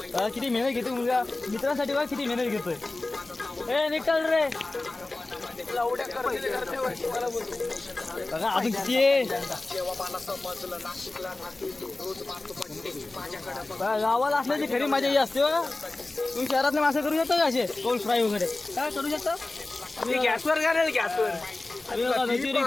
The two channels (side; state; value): right; quieter; 3.1 dB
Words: किती मेहनत घेतो मुलगा मित्रांसाठी बघा किती मेहनत घेतोय. ए निकल रे बघा अजून किती आहे. गावाला असल्याची खरी मजा ही असते बघा. तुम्ही शहरातले मासे करू शकता का असे कौल फ्राय वगैरे काय करू शकता. गॅसवर घालेल गॅसवर.